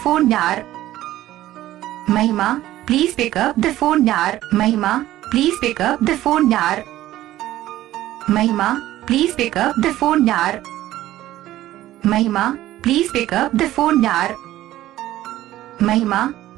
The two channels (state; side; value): quieter; left; 14.5 dB